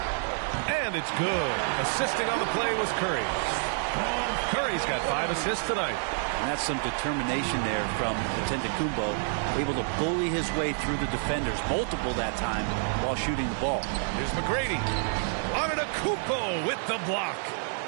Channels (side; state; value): left; silent; 59 dB below the other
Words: And it's good. Assisting on the play was Curry. Curry's got 5 assists tonight. And that's some determination there from Antetokounmpo, able to bully his way through the defenders, multiple that time, while shooting the ball. Here's McGrady. Antetokounmpo with the block.